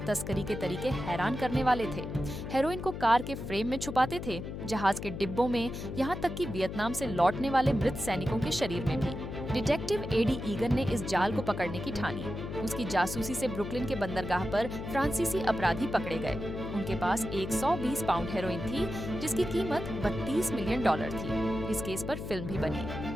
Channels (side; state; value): left; noise; hum, 7 dB below the sound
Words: तस्करी के तरीके हैरान करने वाले थे। हेरोइन को कार के फ्रेम में छुपाते थे, जहाज के डिब्बों में, यहाँ तक कि वियतनाम से लौटने वाले मृत सैनिकों के शरीर में भी। डिटेक्टिव एडी ईगन ने इस जाल को पकड़ने की ठानी। उसकी जासूसी से ब्रुकलिन के बंदरगाह पर फ्रांसीसी अपराधी पकड़े गए। उनके पास 120 पाउंड हेरोइन थी, जिसकी कीमत $32 मिलियन थी। इस केस पर फिल्म भी बनी,